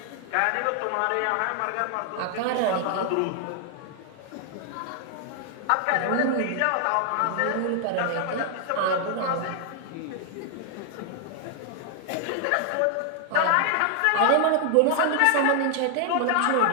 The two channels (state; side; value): different; both; correlation 0.00